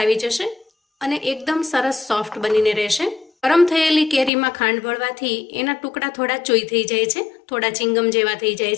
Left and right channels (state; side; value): drops out; right; at 4.3 s